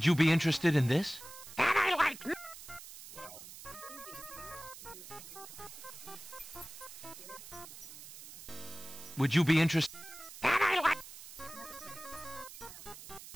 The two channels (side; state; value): right; noise; hiss, 14 dB below the sound